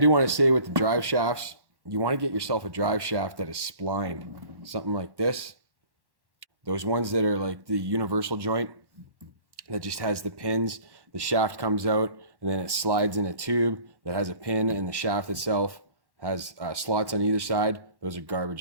want to say with the drive shafts, you want to get yourself a drive shaft that is splined, something like this. Those ones that are like the universal joint that just has the pins. The shaft comes out and then it slides in a tube that has a pin, and the shaft itself has slots on either side. Those are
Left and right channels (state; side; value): late; left; 1.1 ms